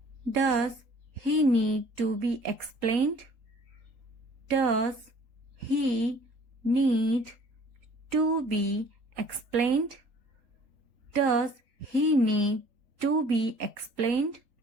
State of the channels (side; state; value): left; late; 3.8 ms